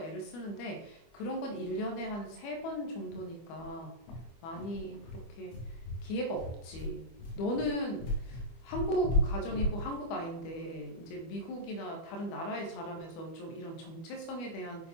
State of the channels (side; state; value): right; late; 25 ms